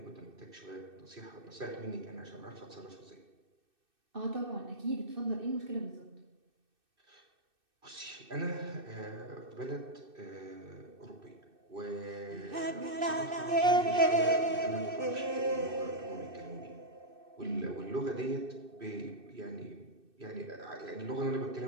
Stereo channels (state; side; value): late; left; 2.6 ms